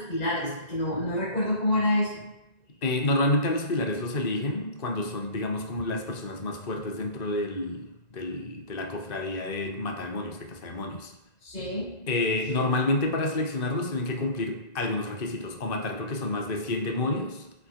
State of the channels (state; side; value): late; right; 1.9 ms